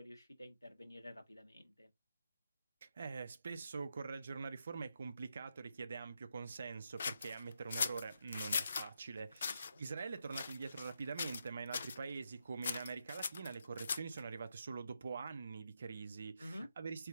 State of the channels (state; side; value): inverted; both; correlation -0.82